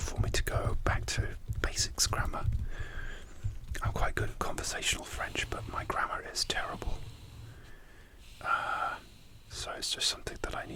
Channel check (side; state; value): both; identical; correlation 1.00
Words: me to go back to basics grammar. I'm quite good at conversational French, but my grammar is terrible. So it's just something that I